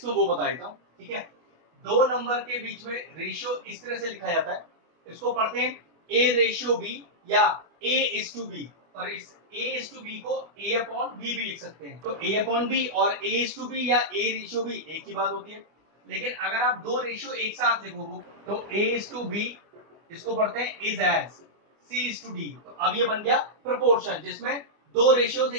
वो बता देता हूँ। ठीक है, दो नंबर के बीच में रेशियो इस तरह से लिखा जाता है, इसको पढ़ते हैं ए रेशियो बी या ए इज टू बी। और इस ए इज टू बी को ए अपॉन बी भी लिख सकते हैं। तो ए अपॉन बी और ए इज टू बी या ए रेशियो बी एक ही बात होती है। लेकिन अगर आप दो रेशियो एक साथ लिखो तो ए इज टू बी, इसको पढ़ते हैं is as C is to D. तो अब ये बन गया प्रोपोर्शन जिसमें दो रेशियोज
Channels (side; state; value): left; late; 24 ms